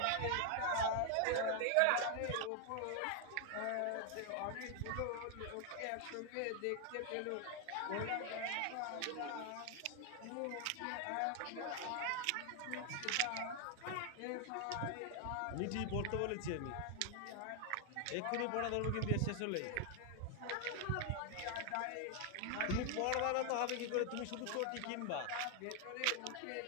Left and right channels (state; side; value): different; both; correlation 0.00